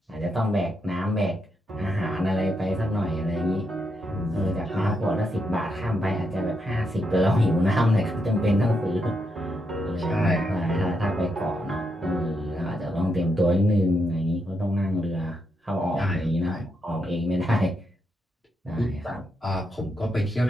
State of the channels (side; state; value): both; normal; correlation 0.81